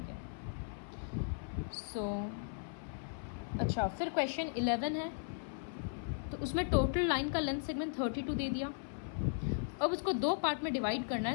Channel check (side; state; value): right; silent; 53 dB below the other